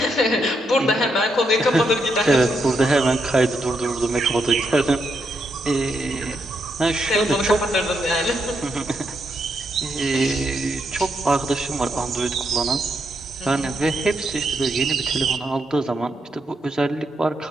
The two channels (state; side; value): normal; both; correlation 0.80